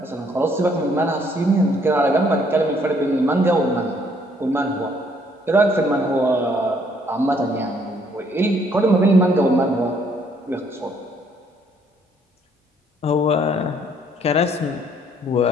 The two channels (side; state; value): both; normal; correlation 0.65